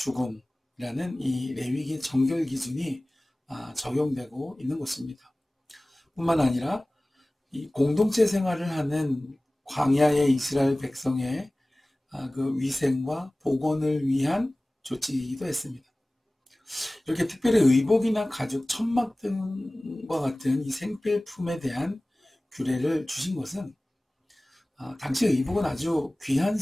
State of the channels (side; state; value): both; normal; correlation 0.98